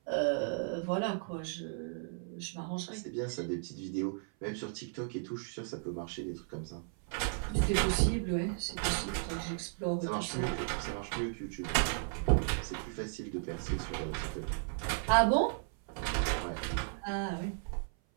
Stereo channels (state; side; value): silent; left; 54 dB below the other